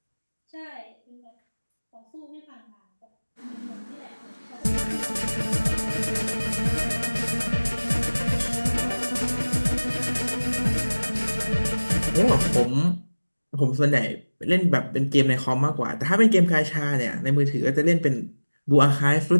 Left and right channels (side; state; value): both; inverted; correlation -1.00